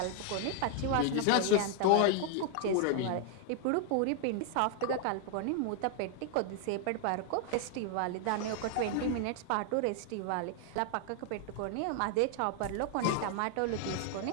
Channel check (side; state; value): both; different; correlation 0.00